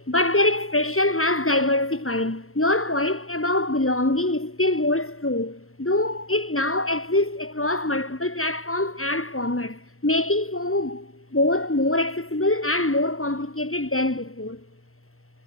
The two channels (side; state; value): right; late; 0.63 ms